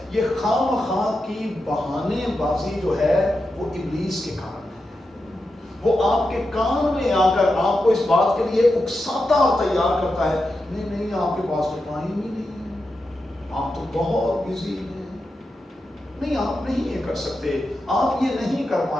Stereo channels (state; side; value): normal; both; correlation 0.89